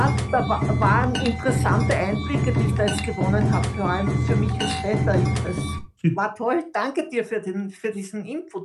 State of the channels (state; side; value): identical; both; correlation 1.00